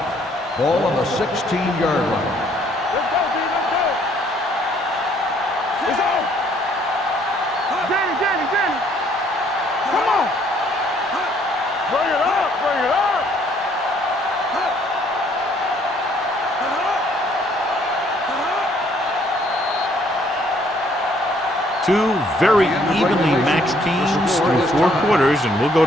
Ball on the 16-yard line. Let's go, D, let's go. It's on. Danny. Come on. Bring it up, bring it up. Two very evenly matched teams through 4 quarters, and we'll go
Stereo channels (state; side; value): normal; both; correlation 0.64